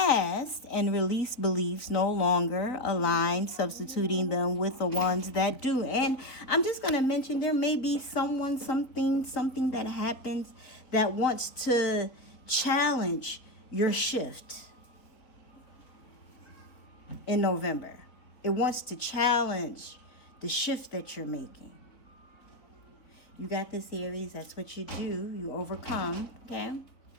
and release beliefs no longer align, substituting them with the ones that do. And I'm just going to mention there may be someone, something that happens that wants to challenge your shift. In November, it wants to challenge the shift that you're making. You got this, Aries. That's what you do. You overcome. Okay.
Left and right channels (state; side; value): late; right; 4.0 ms